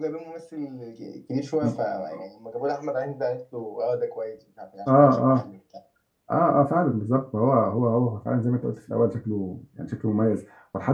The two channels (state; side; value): identical; both; correlation 1.00